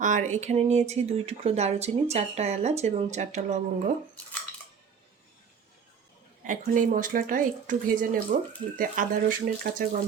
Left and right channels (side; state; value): left; quieter; 6.5 dB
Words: আর এখানে নিয়েছি 2 টুকরো দারুচিনি, 4টা এলাচ এবং 4টা লবঙ্গ। এখন এই মশলাটা একটু ভেজে নেব, যাতে আদা রসুনের কাঁচা